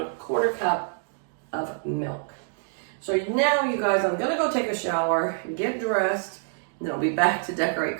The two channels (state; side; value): silent; left; digital silence